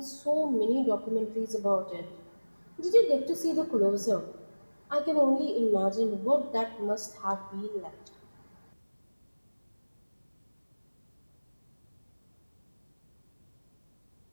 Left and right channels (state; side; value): inverted; both; correlation -1.00